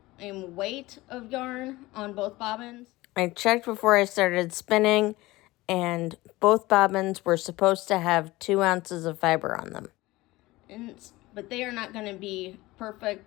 weight of yarn on both bobbins. I checked before I started spinning, and both bobbins were supposed to have 2 ounces of fiber on them. But they are not going to be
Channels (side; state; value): right; quieter; 19.5 dB